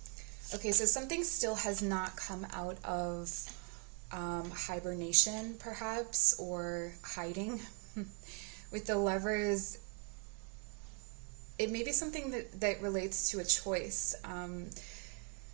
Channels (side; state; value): left; quieter; 37.5 dB